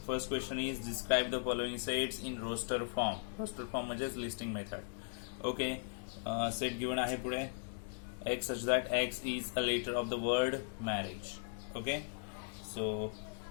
first question is describe the following sets in roster form. Roster form म्हणजेच listing method. Okay. Set given आहे पुढे X such that X is a letter of the word marriage. Okay. So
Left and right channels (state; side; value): silent; right; 52 dB below the other